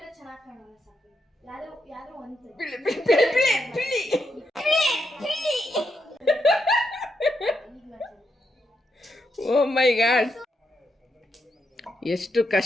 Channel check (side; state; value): both; normal; correlation 0.82